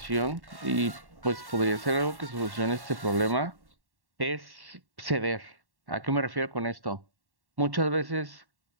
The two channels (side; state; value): left; late; 1.1 ms